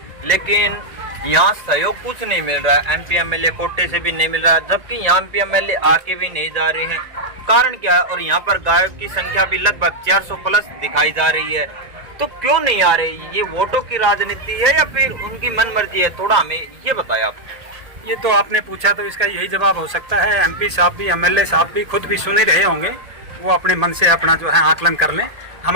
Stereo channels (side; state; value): left; late; 1.8 ms